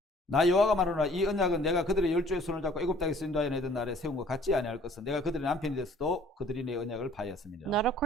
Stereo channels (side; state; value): both; normal; correlation 0.55